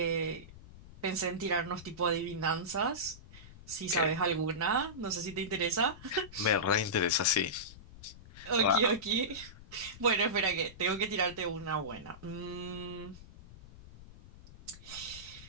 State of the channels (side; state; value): left; noise; rumble, 18 dB below the sound